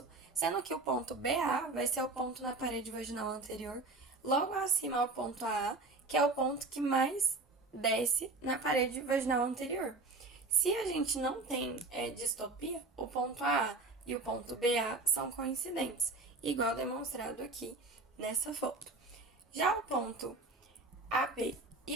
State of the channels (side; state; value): left; quieter; 3.3 dB